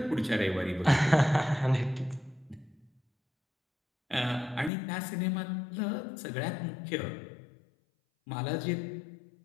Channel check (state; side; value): drops out; right; at 4.7 s